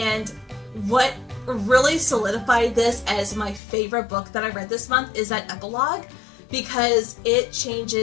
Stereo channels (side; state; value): right; drops out; at 3.6 s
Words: what really solidified this as my favorite book that I read this month is that epilogue, because it